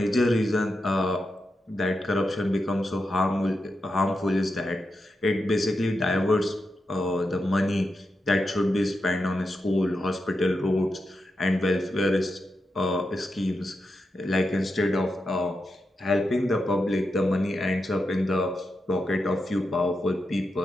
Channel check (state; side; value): normal; both; correlation 0.87